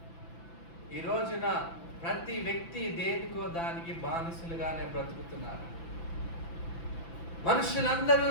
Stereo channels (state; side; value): late; right; 5.9 ms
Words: ఈ రోజున ప్రతి వ్యక్తి దేనికో దానికి బానిసలుగానే బ్రతుకుతున్నారు.